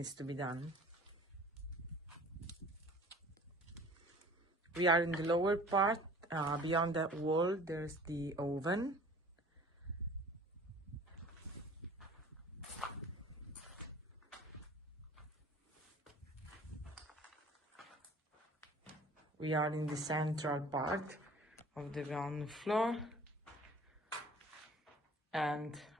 to be done. We are in the lower part. Beyond that wall there's the oven. We are in the central part of the ground floor, and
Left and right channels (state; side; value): normal; both; correlation 0.47